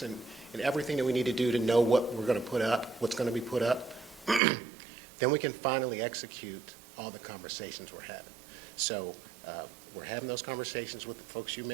and everything that we need to do to know what we're going to put up, what's going to be put up, then we can finally execute all the conversations we're having. So we're having those conversations with the folks you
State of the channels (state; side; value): drops out; left; at 4.4 s